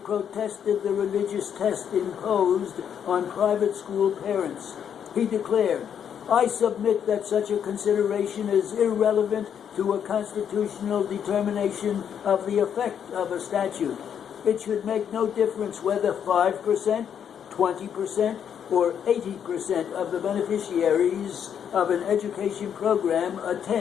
the religious test imposed on private school parents. He declared, "I submit that such a consideration is irrelevant to a constitutional determination of the effect of a statute. It should make no difference whether 5%, 20%, or 80% of the beneficiaries of an education program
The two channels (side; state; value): right; quieter; 8.4 dB